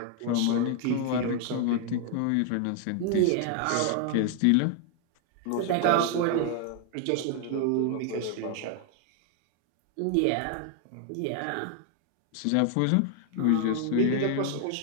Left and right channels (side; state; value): both; different; correlation 0.00